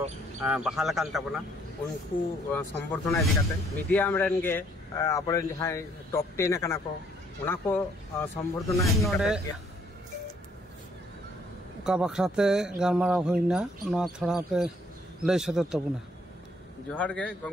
बहाल आकान ताबोना उनको संबर्धना इदी काते मीडियम रेन गे आपरे जहां टॉप 10 आकाना को उना को संबर्धना नोडे का बखराते गालमारा होइना ना थोड़ा पे लय सदर तबुना जोहार गे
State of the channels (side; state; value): both; normal; correlation 0.65